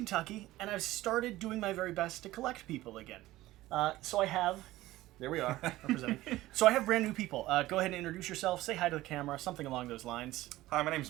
and I've started doing my very best to collect people again. So I have... There we are, representing. So I have brand new people. Go ahead and introduce yourself, say hi to the camera, something along those lines. Hi, my name's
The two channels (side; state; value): left; quieter; 16.8 dB